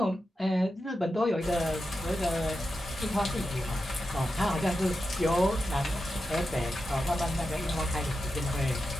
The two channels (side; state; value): both; normal; correlation 0.90